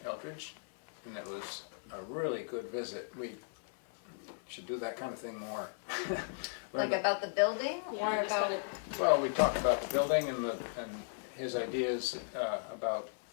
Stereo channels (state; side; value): silent; right; digital silence